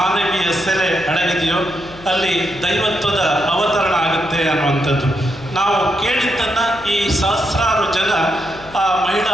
ಸೆಲೆ ಅಡಗಿದೆಯೋ ಅಲ್ಲಿ ದೈವತ್ವದ ಅವತರಣ ಆಗುತ್ತೆ ಅನ್ನುವಂಥದ್ದು. ನಾವು ಕೇಳಿದ್ದನ್ನು ಈ ಸಹಸ್ರಾರು ಜನ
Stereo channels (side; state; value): left; noise; hum, 19 dB below the sound